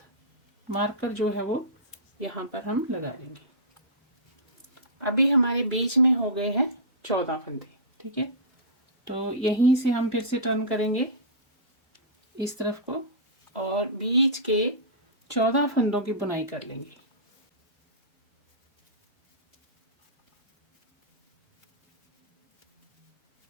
मार्कर जो है वो यहाँ पर हम लगा लेंगे। अभी हमारे बीच में हो गए हैं 14 फंदे, ठीक है। तो यहीं से हम फिर से टर्न करेंगे इस तरफ को और बीच के 14 फंदों की बुनाई कर लेंगे।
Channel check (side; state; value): both; normal; correlation -0.18